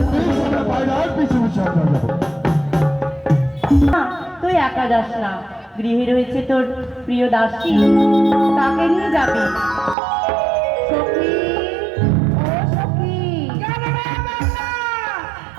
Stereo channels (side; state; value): left; drops out; at 10.0 s